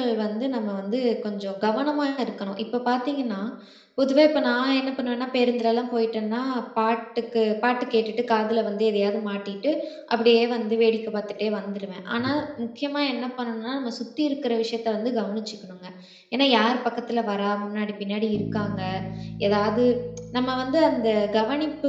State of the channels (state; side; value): identical; both; correlation 1.00